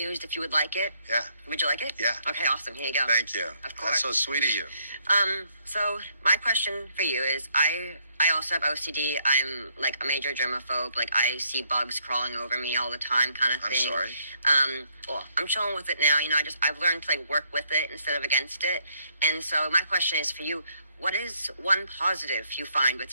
if you would like it. Yeah. Would you like it? Yeah. Okay, awesome. Here you go. Thank you. Of course. That's so sweet of you. So my question for you is, I also have OCD. I'm like a major germaphobe. Like, I see bugs crawling over me all the time, kind of thing. I'm sorry. Well, I'm chilling with it now. You know, I've learned to like work with it instead of against it. And so my question is for you: what is one positive you find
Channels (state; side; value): inverted; both; correlation -0.71